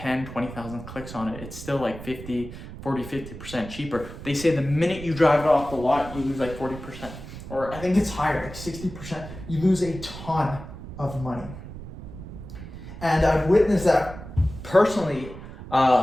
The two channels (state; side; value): noise; right; rumble, 12 dB below the sound